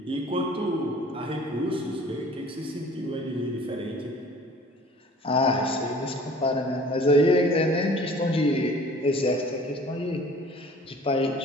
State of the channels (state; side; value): normal; both; correlation 0.48